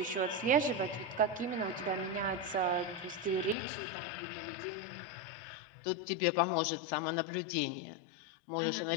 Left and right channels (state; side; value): drops out; right; at 3.6 s